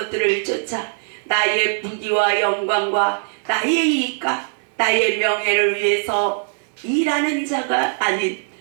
쫓아 나의 부귀와 영광과 나의 이익과 나의 명예를 위해서 일하는 자가 아닌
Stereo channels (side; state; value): left; silent; 65 dB below the other